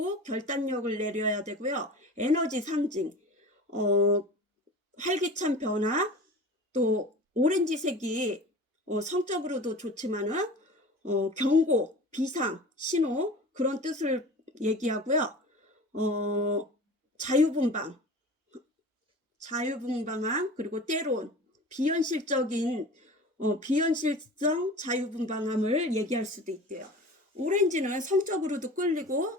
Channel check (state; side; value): normal; both; correlation 0.38